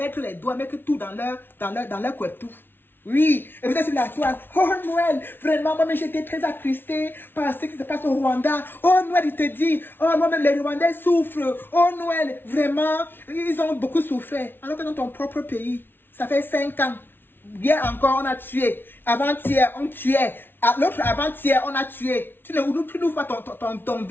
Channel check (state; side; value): late; right; 0.10 ms